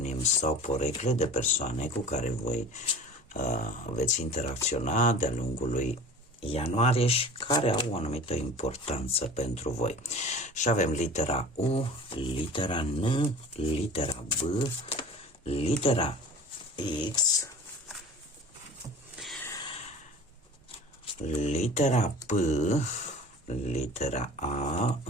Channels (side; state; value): both; normal; correlation 0.40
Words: sau porecle de persoane cu care voi veți interacționa de-a lungul lui ianuarie și care au o anumită importanță pentru voi. Și avem litera U, litera N, litera B, litera X, litera P, litera A,